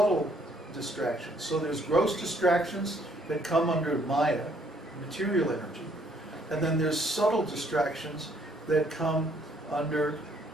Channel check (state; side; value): normal; both; correlation 0.66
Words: distractions. So there's gross distractions that come under Maya, material energy. And then there's subtle distractions that come under